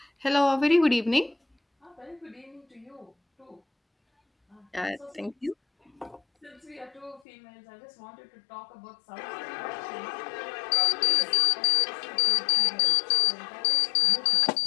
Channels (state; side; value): drops out; right; at 7.2 s